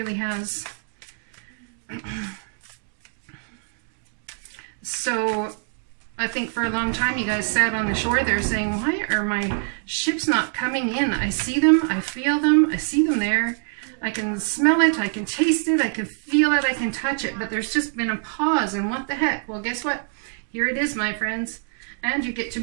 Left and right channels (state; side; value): silent; left; digital silence